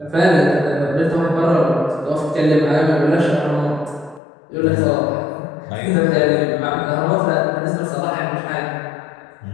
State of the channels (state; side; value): drops out; right; at 4.2 s